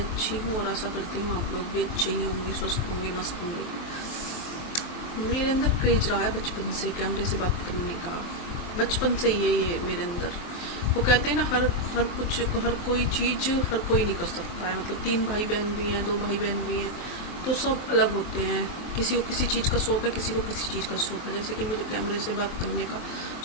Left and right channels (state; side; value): late; right; 23 ms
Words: हूँ और आशा करती हूँ आप लोग भी अच्छे ही होंगे, स्वस्थ होंगे, मस्त होंगे। मेरे अंदर क्रेज रहा है बचपन से कैमरे से बात करने का। बचपन से ही है ये मेरे अंदर। वो कहते हैं ना, हर कोई चीज हर कोई नहीं कर सकता है। मतलब 3 भाई बहन भी हैं, 2 भाई बहन भी हैं, तो सब अलग होते हैं। किसी को किसी चीज का शौक है, किसी को किसी चीज का शौक है। जैसे कि मुझे कैमरे से बात करने का